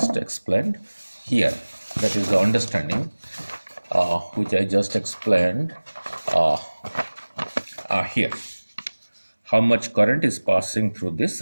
explained here. That is the understanding which I just explained here. How much current is passing through this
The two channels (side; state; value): both; inverted; correlation -1.00